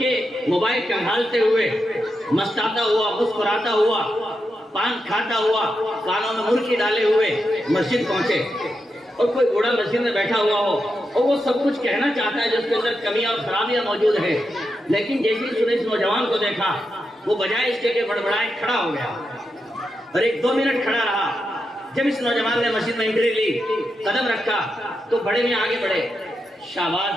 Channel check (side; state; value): both; normal; correlation 0.86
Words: موبائل کنگھالتے ہوئے، مستاتا ہوا، مسکراتا ہوا، پان کھاتا ہوا، کانوں میں مرچی ڈالے ہوئے مسجد پہنچے، اور کوئی بوڑھا مسجد میں بیٹھا ہوا ہو اور وہ سب کچھ کہنا چاہتا ہے جس کے اندر کمیاں اور خرابیاں موجود ہیں، لیکن جیسے ہی اس نے اس نوجوان کو دیکھا، وہ بجائے اس کے کہ بڑبڑائے کھڑا ہو گیا اور 1-2 منٹ کھڑا رہا۔ جب اس نوجوان نے مسجد میں انٹری لی، قدم رکھا تو بڑے میں آگے بڑھے،